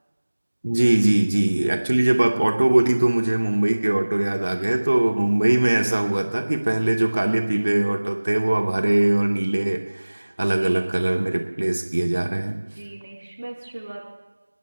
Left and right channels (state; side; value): inverted; both; correlation -1.00